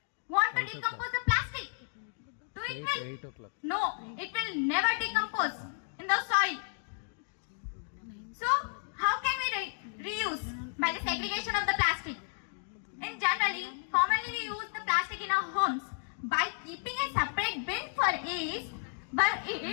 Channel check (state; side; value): silent; right; digital silence